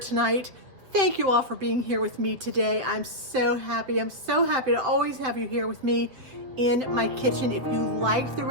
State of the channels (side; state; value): left; late; 7.9 ms